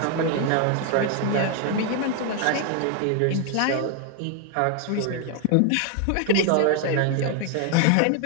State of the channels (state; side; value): different; both; correlation 0.00